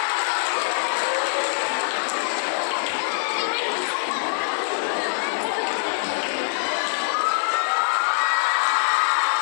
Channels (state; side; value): silent; right; digital silence